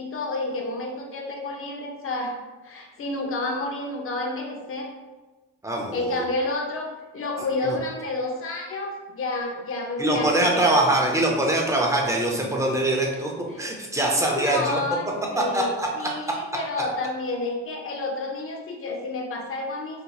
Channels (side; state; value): both; normal; correlation 0.14